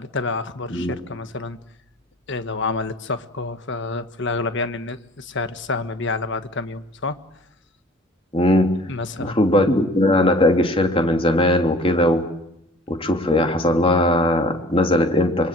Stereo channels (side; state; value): both; normal; correlation 0.47